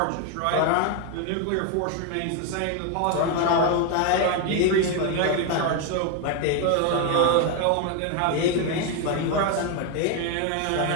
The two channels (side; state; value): both; different; correlation 0.01